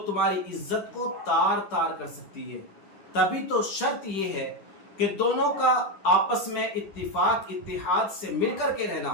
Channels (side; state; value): right; late; 10 ms